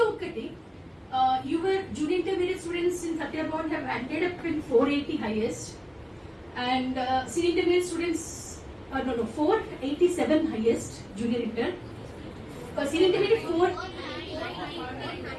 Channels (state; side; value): identical; both; correlation 1.00